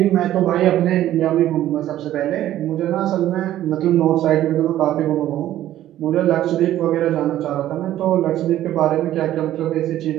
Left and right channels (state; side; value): quieter; left; 13.1 dB